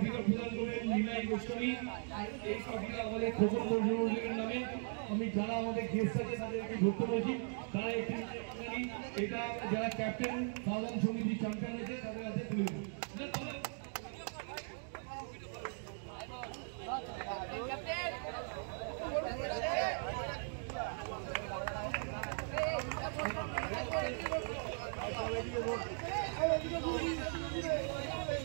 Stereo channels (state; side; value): silent; left; 52 dB below the other